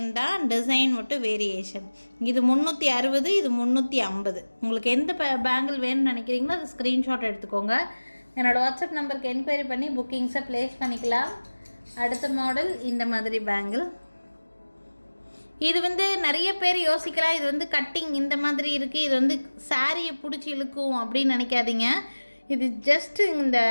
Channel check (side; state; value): both; inverted; correlation -1.00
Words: தான், டிசைன் மட்டும் வேரியேஷன். இது 360, இது 350. உங்களுக்கு எந்த பேங்கிள் வேணும்னு நினைக்கிறீங்களோ அது ஸ்க்ரீன்ஷாட் எடுத்துக்கோங்க. என்னோடய வாட்ஸ்அப் நம்பருக்கு என்கொயரி பண்ணி புக்கிங்ஸை ப்ளேஸ் பண்ணிக்கலாம். அடுத்த மாடல் இந்த மாதிரி பேங்கிள். இது வந்து நிறைய பேர் யோசிக்கலாம், இது வந்து கட்டிங் இந்த மாதிரி இருக்குது, இது வந்து சாரியை பிடிச்சி இழுக்கும் அப்படின்னு நினைக்காதீங்க. இது ஜஸ்ட்டு இந்த